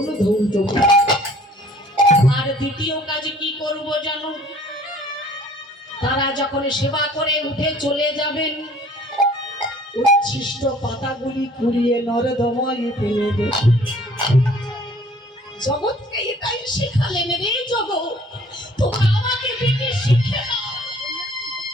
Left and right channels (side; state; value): both; normal; correlation 0.54